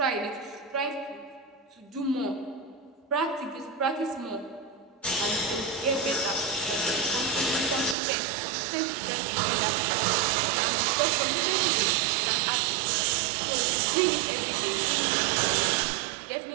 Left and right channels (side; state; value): left; drops out; at 8.0 s